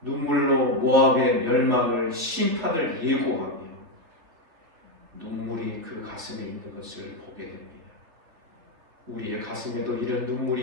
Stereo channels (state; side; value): late; left; 3.1 ms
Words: 눈물로 모압의 멸망을 심판을 예고하며 눈물이 그 가슴에 있는 것을 보게 됩니다. 우리의 가슴에도 이런